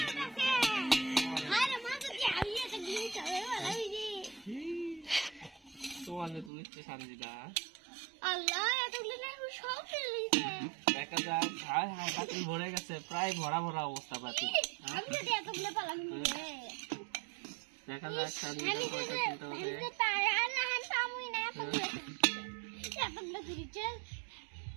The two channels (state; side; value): drops out; left; at 6.5 s